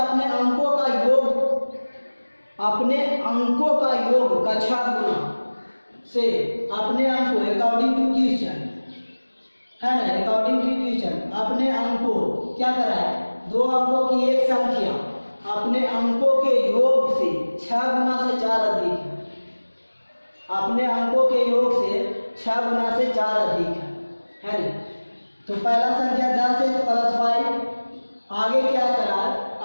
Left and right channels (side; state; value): both; inverted; correlation -1.00